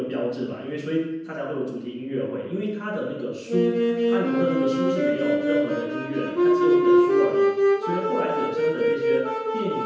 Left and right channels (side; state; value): both; identical; correlation 1.00